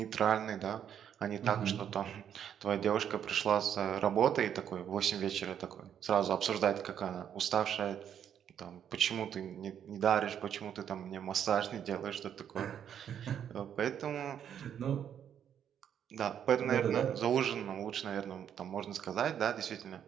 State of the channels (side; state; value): left; quieter; 9.1 dB